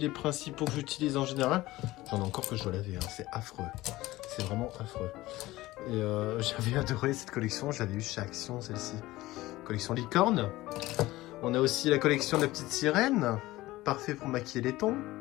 principaux que j'utilise en général. J'en ai encore que je dois laver, hein. C'est affreux. C'est vraiment affreux. Et j'avais adoré cette collection, j'avais eu chez Action celle-ci. Collection licorne. On a aussi la collection de la petite sirène. Parfait pour maquiller les tons.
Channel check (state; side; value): quieter; right; 17.9 dB